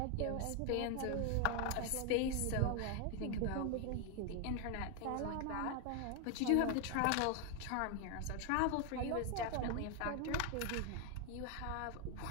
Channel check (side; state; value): both; different; correlation 0.01